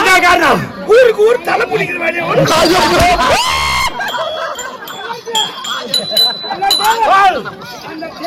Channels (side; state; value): both; identical; correlation 1.00